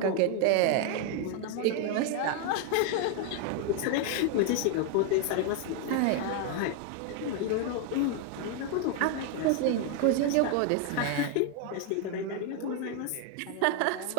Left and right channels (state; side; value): different; both; correlation 0.00